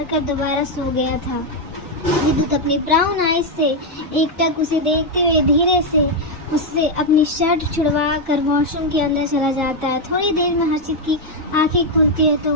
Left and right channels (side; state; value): both; normal; correlation 0.02